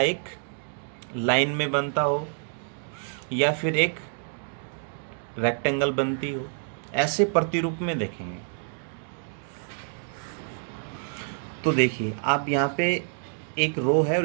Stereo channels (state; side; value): silent; left; digital silence